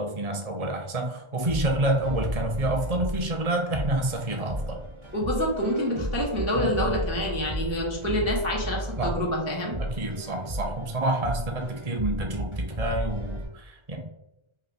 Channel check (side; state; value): left; late; 1.4 ms